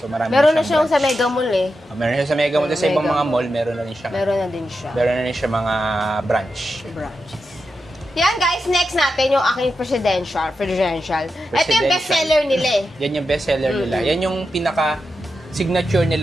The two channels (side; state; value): both; normal; correlation 0.88